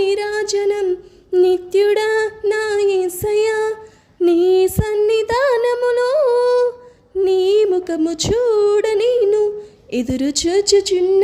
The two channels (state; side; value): identical; both; correlation 1.00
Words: నిత్యుడా నా యేసయ్యా, నీ సన్నిధానములో నీ ముఖము చూడ నేను ఎదురు